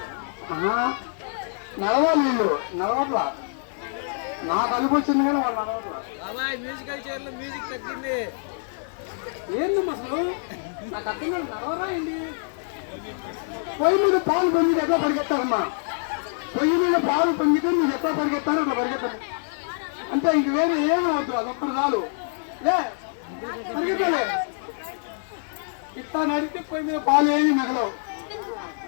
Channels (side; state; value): right; silent; 61 dB below the other